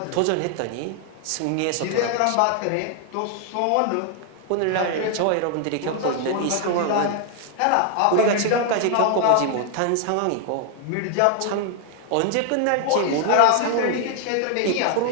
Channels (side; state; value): both; different; correlation 0.00